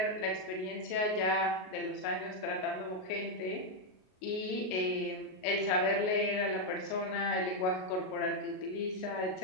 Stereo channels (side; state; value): right; late; 38 ms